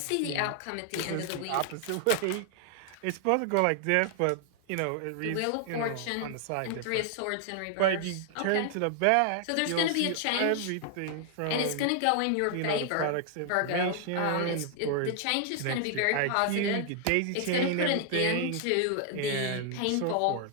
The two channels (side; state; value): both; different; correlation 0.00